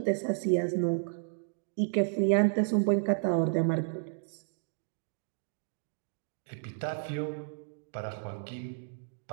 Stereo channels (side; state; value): left; silent; digital silence